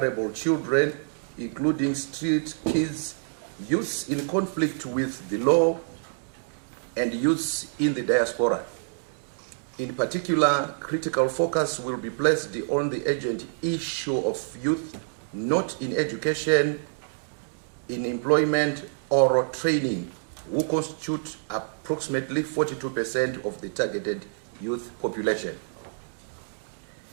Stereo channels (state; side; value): silent; left; digital silence